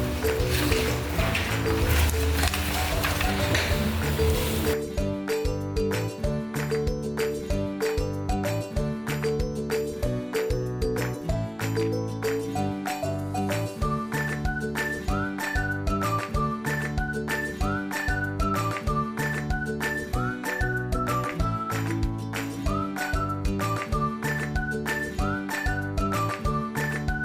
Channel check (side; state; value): both; identical; correlation 1.00